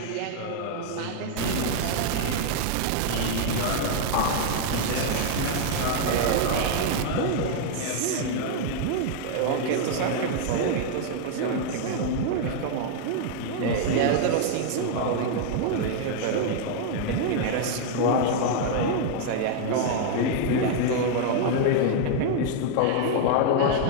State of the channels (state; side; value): different; both; correlation 0.00